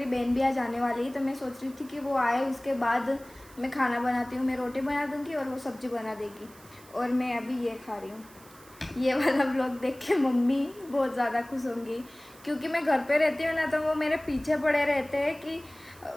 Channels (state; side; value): noise; right; hiss, 23 dB below the sound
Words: बहन भी आज आने वाली है, तो मैं सोच रही थी कि वो आए, उसके बाद मैं खाना बनाती हूँ। मैं रोटी बना दूँगी और वो सब्ज़ी बना देगी, और मैं अभी ये खा रही हूँ। ये वाला व्लॉग देख के मम्मी बहुत ज़्यादा खुश होंगी, क्योंकि मैं घर पे रहती हूँ ना, तो वो मेरे पीछे पड़े रहते हैं कि